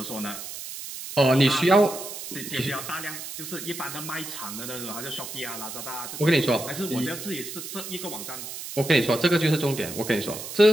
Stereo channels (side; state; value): right; noise; hiss, 9 dB below the sound